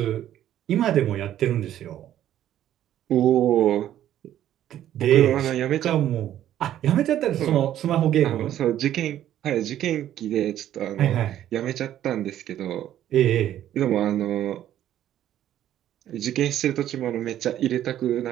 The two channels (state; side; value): quieter; left; 11.8 dB